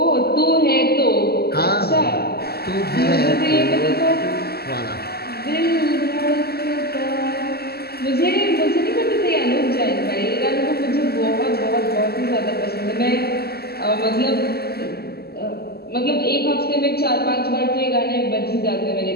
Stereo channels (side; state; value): right; late; 0.46 ms